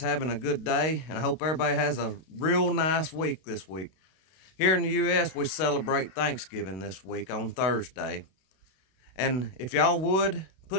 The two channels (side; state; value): right; late; 32 ms